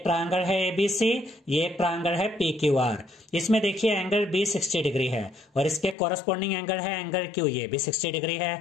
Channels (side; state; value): right; drops out; at 6.0 s